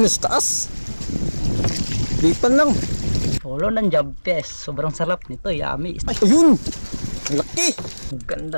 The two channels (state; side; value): inverted; both; correlation -1.00